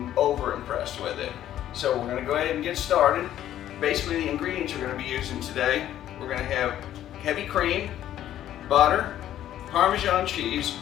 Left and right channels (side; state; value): right; quieter; 11.9 dB